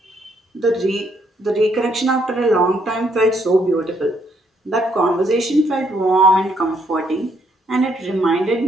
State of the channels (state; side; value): normal; both; correlation 0.71